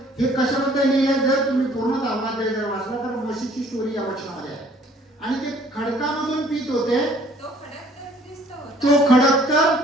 हे कशाबद्दल लिहिलंय? जर तुम्ही पूर्ण 10 अध्याय जर वाचला तर मोशेची स्टोरी या वचनामध्ये आहे. आणि ते खडकामधून पित होते. तो खडक तर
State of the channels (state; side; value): normal; both; correlation 0.57